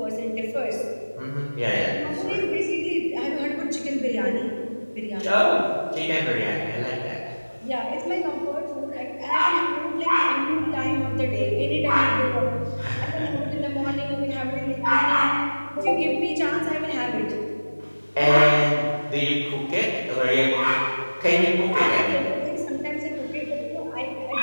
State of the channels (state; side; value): inverted; both; correlation -1.00